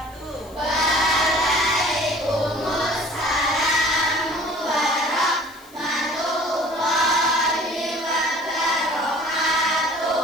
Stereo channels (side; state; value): left; noise; hiss, 25 dB below the sound